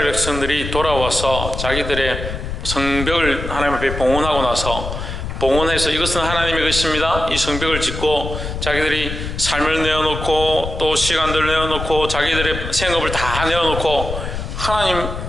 백성들이 돌아와서 자기들의 성벽을 하나님 앞에 봉헌하고 나서 봉헌해서 이것은 하나님의 것입니다. 이 성벽을 짓고 자기들이 삶을 내어놓고 또 시간들을 내어놓고 자기들의 생업을 다 내어놓고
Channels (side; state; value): left; noise; rumble, 6 dB below the sound